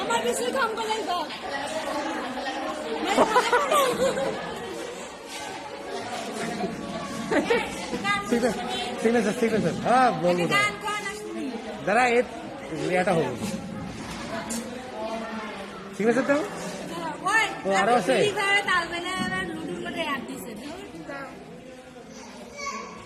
আমার বেশি কাম করে দাও ঠিক আছে ঠিক আছে হ্যাঁ বলবো দাঁড়া এটা হবো ঠিক আছে তো ও আরো আছে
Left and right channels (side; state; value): both; identical; correlation 1.00